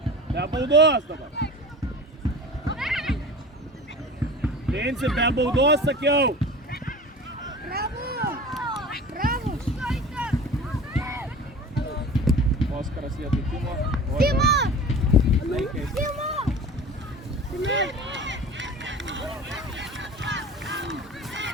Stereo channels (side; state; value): both; normal; correlation 0.38